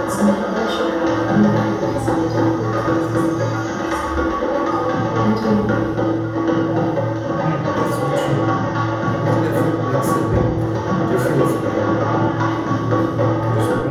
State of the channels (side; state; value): both; identical; correlation 1.00